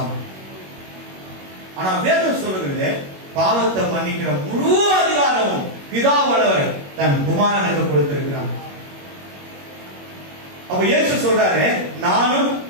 ஆனா வேதம் சொல்லுகிறது பாவத்தை மன்னிக்கிற முழு அதிகாரமும் பிதாவானவர் தன் குமாரனுக்கு கொடுத்திருக்கிறார். அப்ப இயேசு சொல்றாரு, நானும்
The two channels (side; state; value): left; late; 21 ms